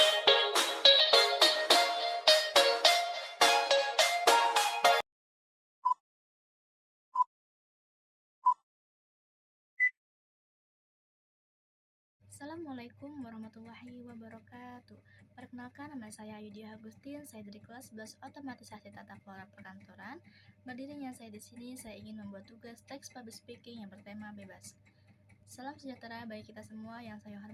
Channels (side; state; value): both; identical; correlation 1.00